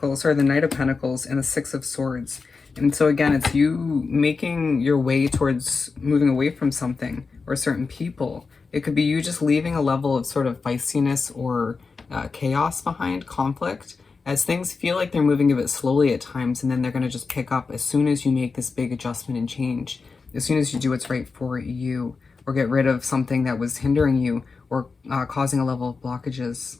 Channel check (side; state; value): right; quieter; 4.6 dB